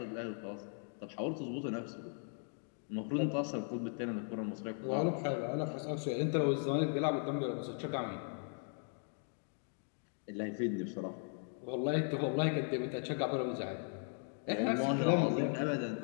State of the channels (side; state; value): right; silent; 53 dB below the other